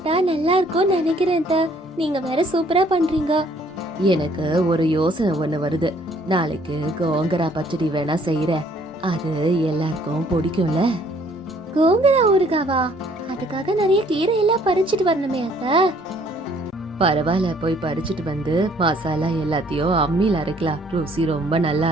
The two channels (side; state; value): both; normal; correlation 0.61